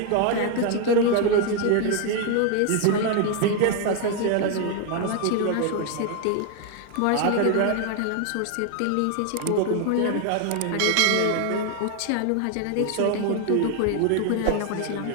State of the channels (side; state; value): both; different; correlation 0.01